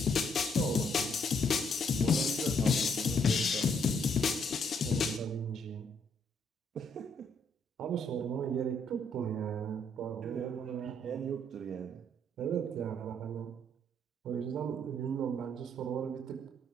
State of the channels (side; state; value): both; normal; correlation 0.70